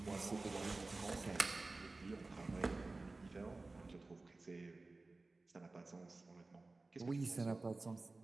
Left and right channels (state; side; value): quieter; left; 3.3 dB